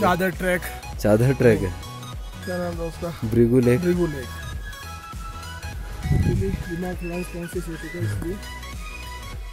ट्रैक। चादर ट्रैक है? क्या नाम है उसका? ब्रिगू लेक। ब्रिगू लेक। दिमाग लंग्स कॉन्शियस हो चुका है इसलिए।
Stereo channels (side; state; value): both; identical; correlation 1.00